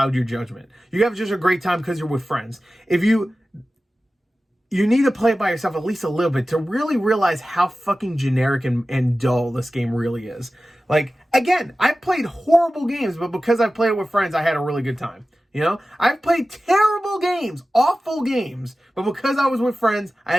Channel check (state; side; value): normal; both; correlation 0.95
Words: your judgment. You have just a great time because you're with friends. If you need to play it by yourself at least a little bit to really realize how fucking generic and dull this game really is. Like, again, I've played horrible games, but because I've played it with friends, I had a really good time. You know? I've played terrible games, awful games, but because I was with friends, I